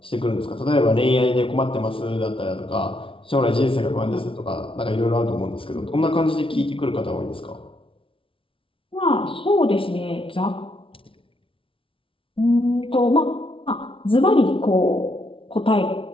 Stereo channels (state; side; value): late; right; 0.25 ms